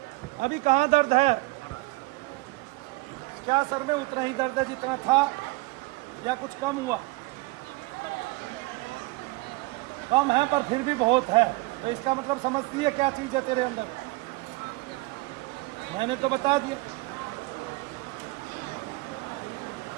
अभी कहाँ दर्द है? क्या सर में उतना ही दर्द है जितना था या कुछ कम हुआ? कम है पर फिर भी बहुत है, तो इसका मतलब समझती है क्या चीज है तेरे अंदर? मैंने तो बता दिया।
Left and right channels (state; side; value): quieter; left; 23.1 dB